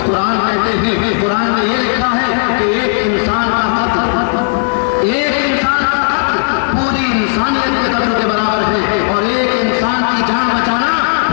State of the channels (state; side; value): silent; right; digital silence